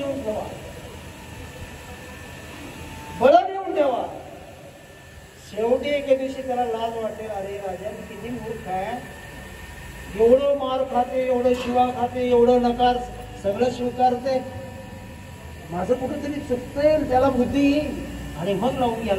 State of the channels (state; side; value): identical; both; correlation 1.00